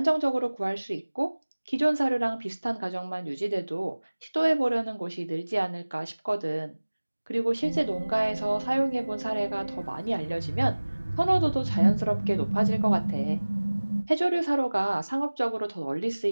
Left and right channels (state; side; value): inverted; both; correlation -1.00